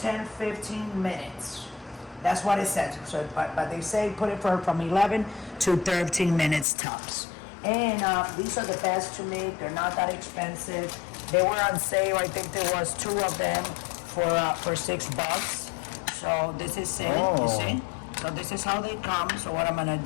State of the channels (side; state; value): right; drops out; at 6.7 s